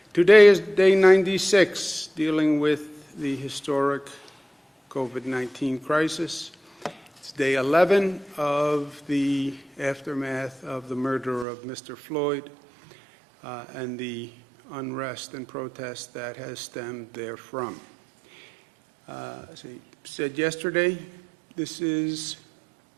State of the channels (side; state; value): left; drops out; at 11.5 s